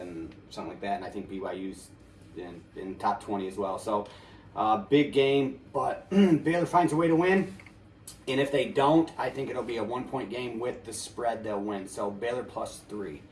something like that. And I think BYU's in top 20 as well. So big game, but Baylor finds a way to win. And if they don't, I think it'll be a 1-point game with the spread. They'll win. So Baylor +3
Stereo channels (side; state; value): both; identical; correlation 1.00